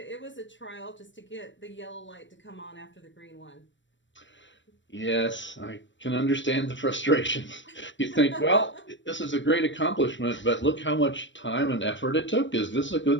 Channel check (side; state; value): right; late; 0.54 ms